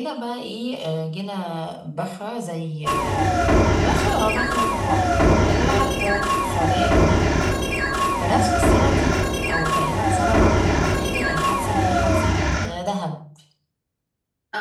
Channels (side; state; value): both; identical; correlation 1.00